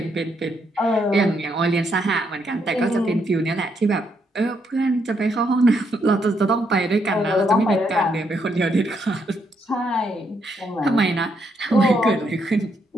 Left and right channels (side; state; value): both; normal; correlation 0.76